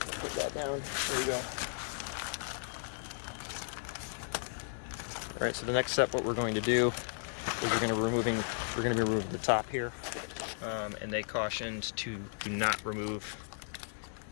that down. There you go. All right. So the next step, what we're going to do is we're going to be removing the top here, and they cautioned to do not remove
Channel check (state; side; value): silent; right; 54 dB below the other